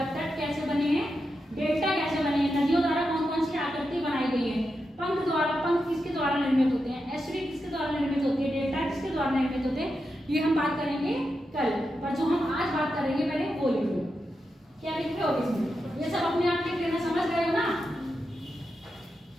तट कैसे बने हैं, डेल्टा कैसे बने हैं, नदियों द्वारा कौन कौन सी आकृति बनाई गई है, पंख द्वारा, पंख किसके द्वारा निर्मित होते हैं, एस्ट्री किसके द्वारा निर्मित होती है, डेल्टा किसके द्वारा निर्मित होते हैं, ये हम बात करेंगे कल। पर जो हम आज बात करेंगे पहले वो लिखो, क्या लिखे हो इसमें, ये सब अपने आप लिख लेना, समझ गए हो ना।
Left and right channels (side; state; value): both; normal; correlation 0.87